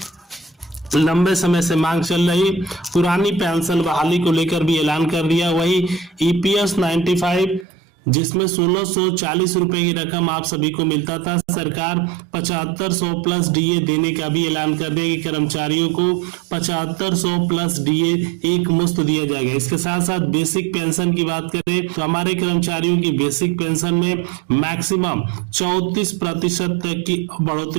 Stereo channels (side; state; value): left; drops out; at 7.7 s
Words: लंबे समय से मांग चल रही पुरानी पेंशन बहाली को लेकर भी ऐलान कर दिया। वही ईपीएस 95 जिसमें 1640 रुपए की रकम आप सभी को मिलता था, सरकार 7500 प्लस डीए देने का भी ऐलान कर दिया कि कर्मचारियों को 7500 प्लस डीए एक मुश्त दिया जाएगा। इसके साथ साथ बेसिक पेंशन की बात करें तो हमारे कर्मचारियों की बेसिक पेंशन में मैक्सिमम 34% तक की